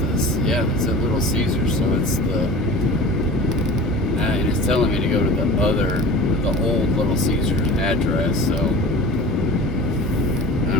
yeah, it's at Little Caesars, so it's and it's telling me to go to the old Little Caesars address, so I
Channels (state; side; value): normal; both; correlation 0.38